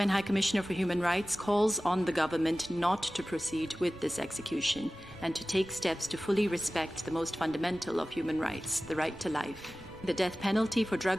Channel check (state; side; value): noise; right; rumble, 20 dB below the sound